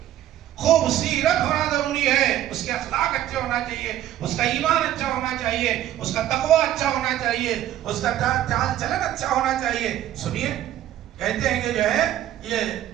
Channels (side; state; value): left; quieter; 12.5 dB